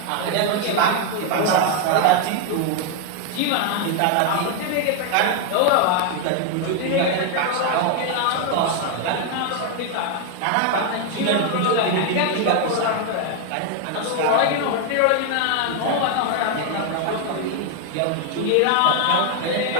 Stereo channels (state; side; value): different; both; correlation 0.00